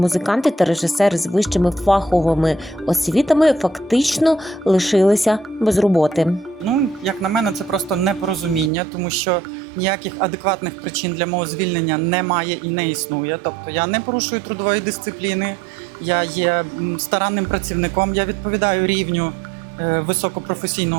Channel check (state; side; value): drops out; left; at 8.7 s